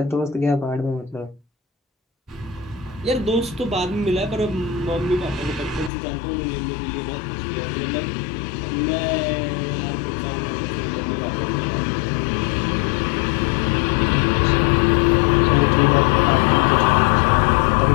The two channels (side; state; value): right; drops out; at 5.9 s